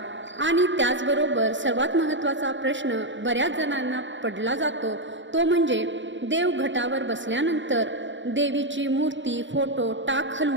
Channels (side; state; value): left; late; 0.54 ms